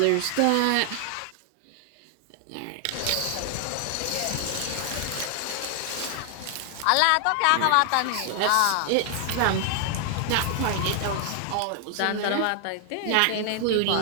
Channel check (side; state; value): both; different; correlation 0.00